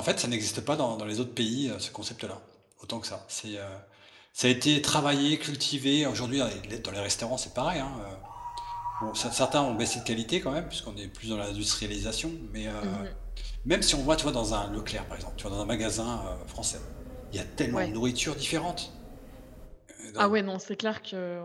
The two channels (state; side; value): identical; both; correlation 1.00